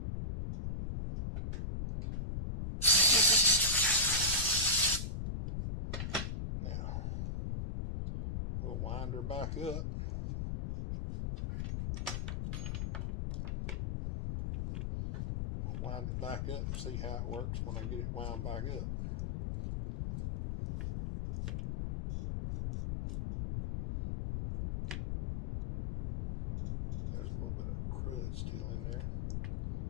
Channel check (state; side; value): noise; left; rumble, 3 dB below the sound